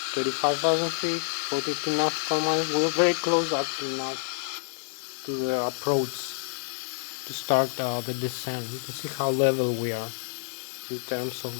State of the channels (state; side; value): silent; right; digital silence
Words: 35,000 feet, 42 nautical miles. We're very close actually now to the approach to start the descent. You can see how level we are in terms